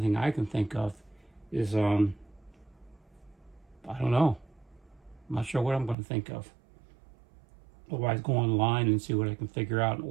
thing I can think of is, I don't know. I'm not sure what I'm going to think of. Otherwise, go online and see what I can figure out and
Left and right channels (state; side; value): drops out; left; at 6.0 s